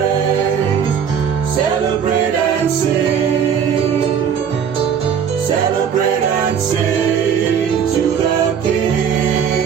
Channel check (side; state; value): left; quieter; 7.7 dB